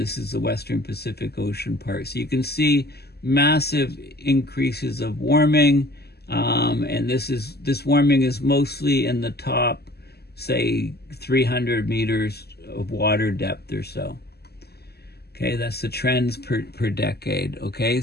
is the Western Pacific Ocean part. So you can see massive increases of warming. And this warming is mostly in the top, say, 300 meters of water depth or so. Okay, that's the trends per decade. Okay,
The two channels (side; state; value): right; late; 0.46 ms